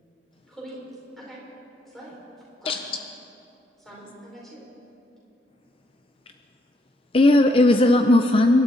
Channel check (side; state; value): both; normal; correlation 0.74